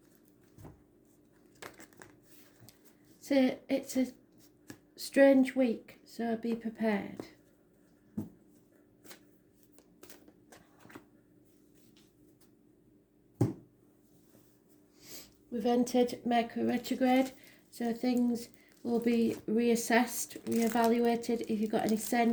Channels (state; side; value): identical; both; correlation 1.00